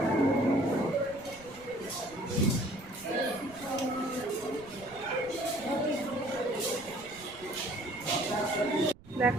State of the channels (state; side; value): noise; right; rumble, 22 dB below the sound